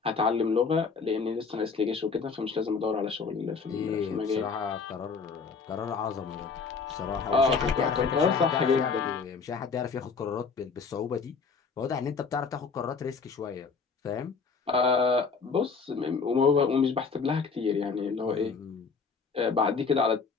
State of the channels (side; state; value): right; quieter; 5.1 dB